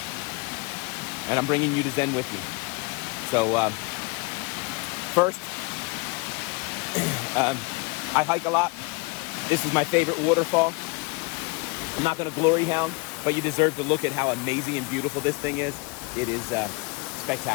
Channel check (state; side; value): quieter; right; 27.5 dB